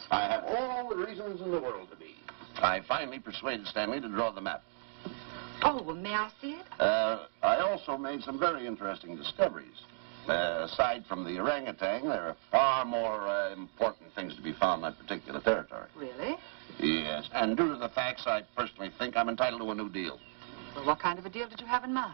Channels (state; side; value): silent; left; digital silence